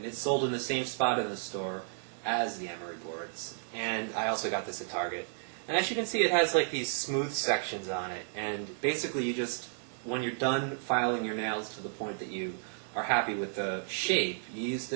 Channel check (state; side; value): silent; left; digital silence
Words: it's sold in the same spot in the store as the emery boards. And I also got this at Target. And as you can see, it has like these smooth sections on it. And basically, when you're done filing your nails to the point that you are happy with the shape, you use